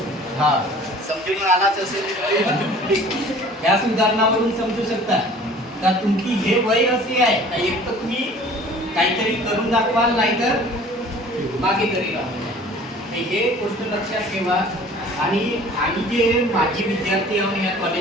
हा समजून आलाच असेल. या उदाहरणावरून समजू शकता का तुमची हे वय असे आहे का एक तर तुम्ही काहीतरी करून दाखवाल नाहीतर मागे तरी राहा. हे गोष्ट लक्षात ठेवा. आणि आम्ही जे माजी विद्यार्थी आहोत या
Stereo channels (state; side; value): normal; both; correlation 0.48